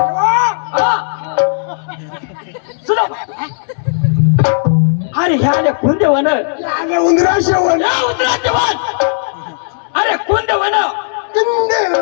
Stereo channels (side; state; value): right; silent; digital silence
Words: सुदामा अरे ह्या आले कुंदे वन आले उंदरा शेवण या उंदराचे वन अरे कुंदे वन